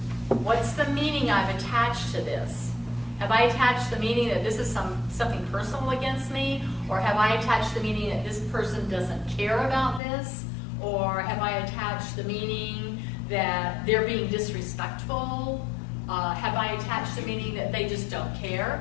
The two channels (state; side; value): drops out; right; at 10.0 s